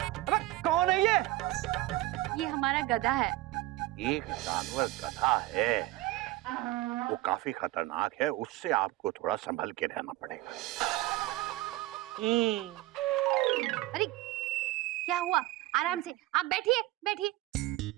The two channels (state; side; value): quieter; left; 17.7 dB